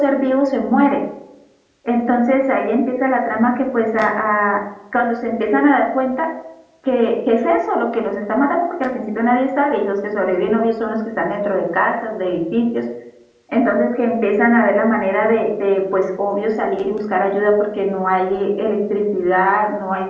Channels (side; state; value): both; identical; correlation 1.00